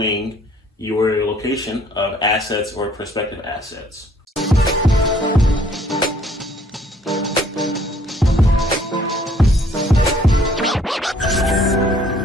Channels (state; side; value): normal; both; correlation 0.60